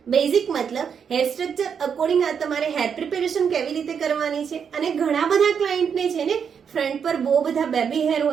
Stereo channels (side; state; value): left; quieter; 7.1 dB